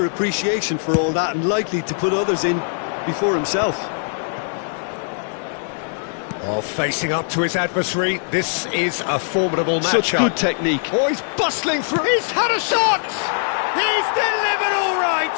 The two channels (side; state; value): right; silent; digital silence